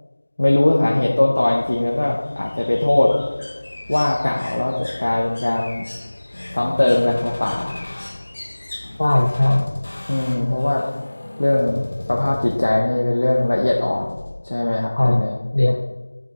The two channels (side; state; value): both; inverted; correlation -1.00